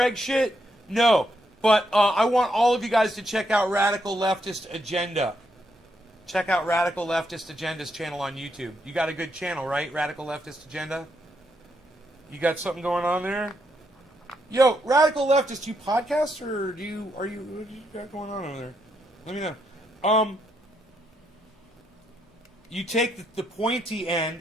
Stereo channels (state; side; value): normal; both; correlation 0.78